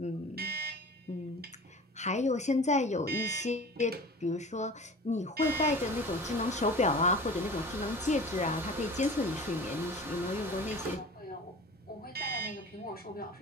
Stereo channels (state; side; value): normal; both; correlation 0.39